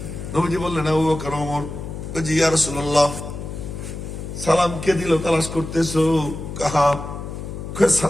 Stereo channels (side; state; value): left; noise; hum, 8 dB below the sound